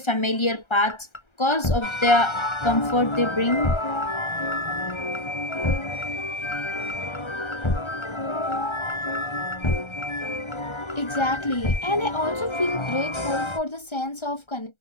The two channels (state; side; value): late; right; 1.3 ms